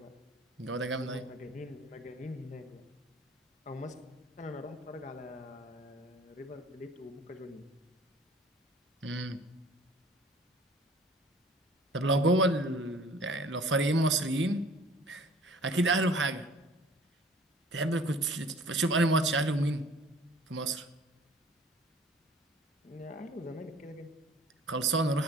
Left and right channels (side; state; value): both; normal; correlation 0.51